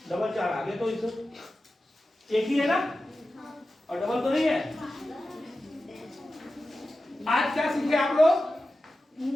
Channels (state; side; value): normal; both; correlation 0.93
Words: डबल 4 आ गया। तो इस एक ही है ना, और डबल तो नहीं है। आज क्या सीखे आप लोग?